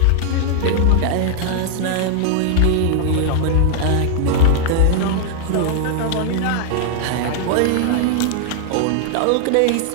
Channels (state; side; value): different; both; correlation 0.00